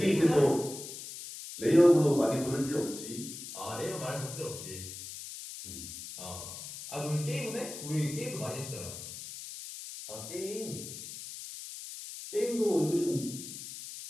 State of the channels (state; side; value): noise; left; hiss, 10 dB below the sound